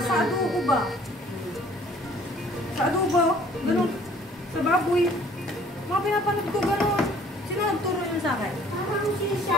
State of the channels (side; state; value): both; normal; correlation 0.55